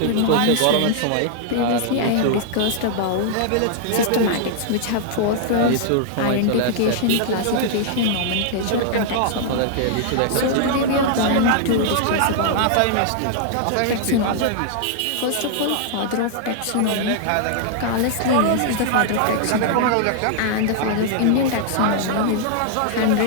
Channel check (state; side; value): different; both; correlation -0.01